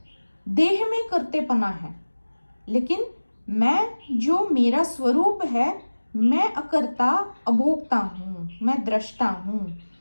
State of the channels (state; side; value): inverted; both; correlation -1.00